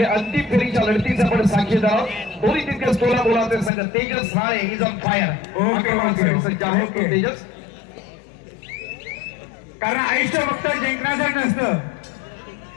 अंतिम फेरीच्या लढतीचा आपण साक्षीदार आहोत. दोन्ही तितकेच तोलामोलाचे संघ. Tejas Rale is on fire. Tejas, कारण आयुष्य फक्त जिंकण्यासाठी नसतं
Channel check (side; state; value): right; drops out; at 3.7 s